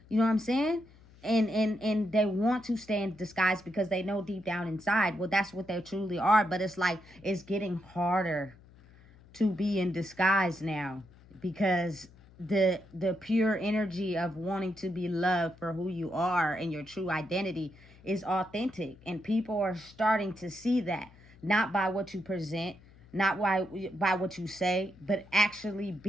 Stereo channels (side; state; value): left; noise; hum, 24 dB below the sound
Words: You know what I'm saying? And they want to stay in disguise because they know deep down inside, well, that's what they truly are. But it's like it's getting harder to be in disguise now, because the pure energy of wanting to be loved for who you are and your true identity is authentic, and people are starting to see that, not by what you present, not by what you say, but actually